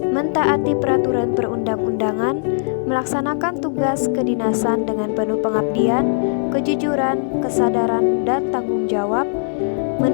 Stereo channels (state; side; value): silent; right; 60 dB below the other